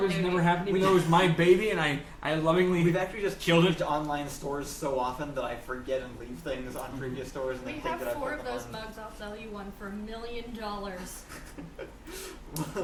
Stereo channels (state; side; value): identical; both; correlation 1.00